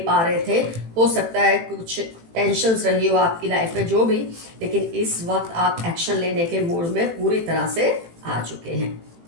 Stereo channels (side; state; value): left; late; 18 ms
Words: रहे थे। हो सकता है कुछ टेंशन्स रही हो आपकी लाइफ में, जो भी, लेकिन इस वक्त आप एक्शन लेने के मूड में पूरी तरह से आ चुके हैं।